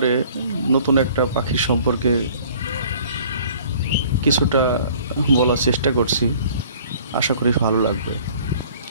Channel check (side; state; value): both; inverted; correlation -0.52